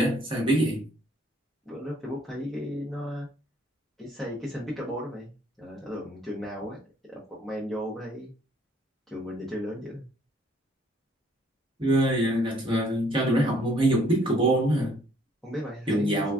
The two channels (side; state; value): both; normal; correlation 0.62